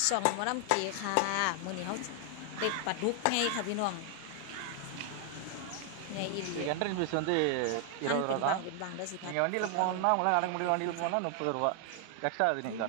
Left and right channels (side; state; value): both; different; correlation 0.00